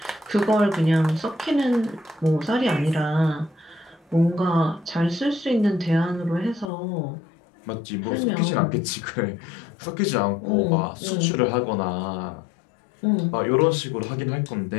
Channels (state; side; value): drops out; right; at 6.7 s